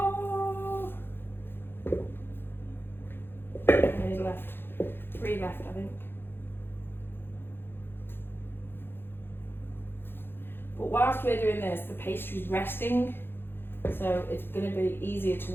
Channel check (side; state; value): right; late; 0.10 ms